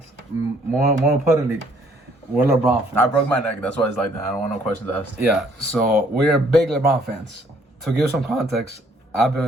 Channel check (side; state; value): both; normal; correlation 0.63